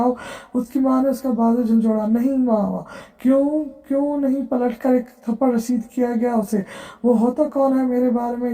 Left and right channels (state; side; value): identical; both; correlation 1.00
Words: اس کی ماں نے اس کا بازو جھنجھوڑا۔ نہیں ماما، क्यों नहीं पलट कर एक थप्पड़ रसीद किया गया उसे। वो होता कौन है मेरे बारे में